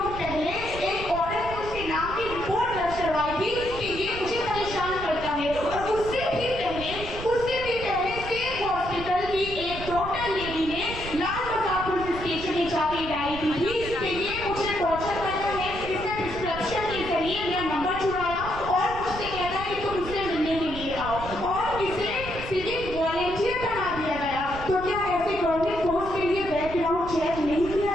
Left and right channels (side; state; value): right; noise; rumble, 10 dB below the sound